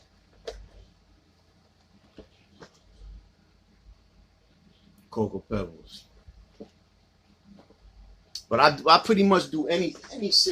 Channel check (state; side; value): identical; both; correlation 1.00